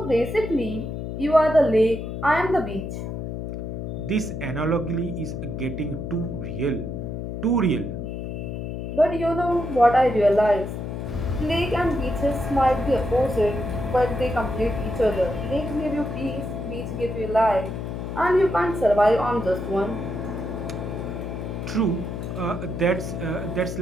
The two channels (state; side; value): noise; left; hum, 5 dB below the sound